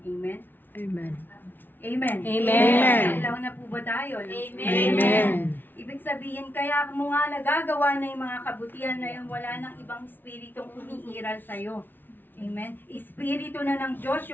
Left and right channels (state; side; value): late; right; 0.093 ms